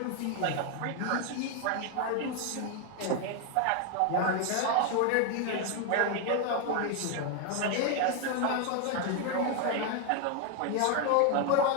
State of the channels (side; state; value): both; different; correlation 0.01